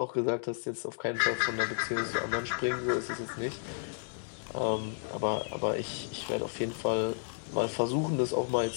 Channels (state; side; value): silent; right; digital silence